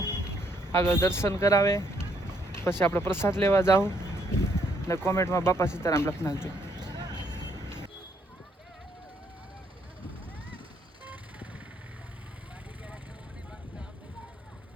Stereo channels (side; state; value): both; normal; correlation 0.70